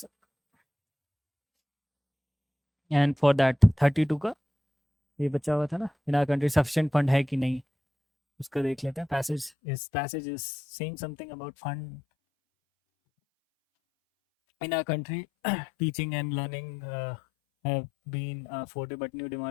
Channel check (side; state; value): right; drops out; at 9.5 s